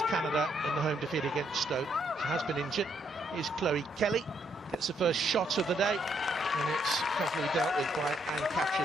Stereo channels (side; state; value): both; normal; correlation 0.73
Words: Canada in the home defeat against Stoke. She has been injured. Here's Chloe Kelly, gets the first shot of the day, and it's carefully dealt with by